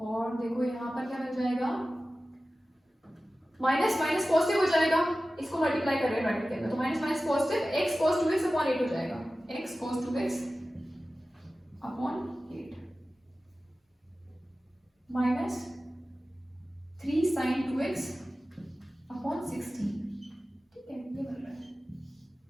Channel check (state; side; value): normal; both; correlation 0.95